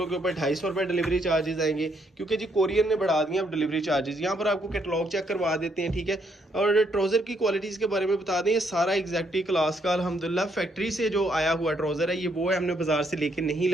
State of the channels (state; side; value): normal; both; correlation 0.73